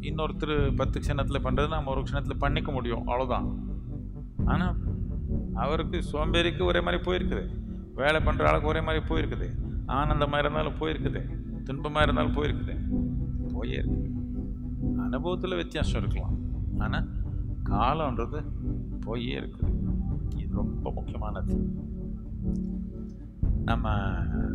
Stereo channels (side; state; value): both; identical; correlation 1.00